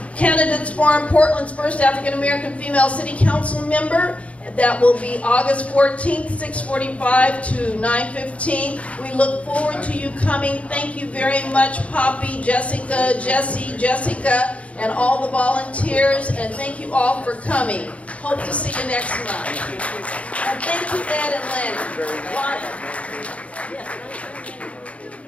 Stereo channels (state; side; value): late; right; 0.064 ms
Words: Candidates Forum, Portland's first African American female city council member. That will be August 14th, 6:45 to 9:15. We look forward to you coming. Thank you very much, Poppy, Jessica, Jessica, and all the volunteers. And thank you all for coming. Hope to see you next month. And thank you, Ed and Lani.